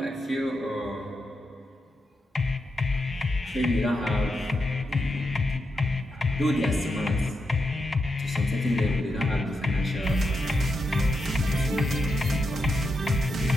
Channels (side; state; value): both; normal; correlation 0.85